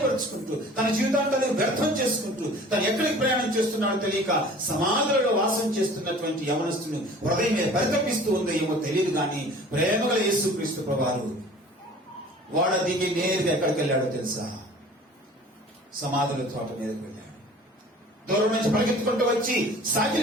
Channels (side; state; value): both; normal; correlation 0.46